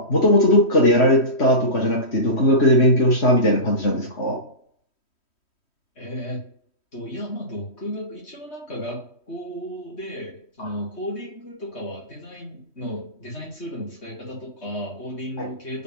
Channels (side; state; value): right; late; 3.1 ms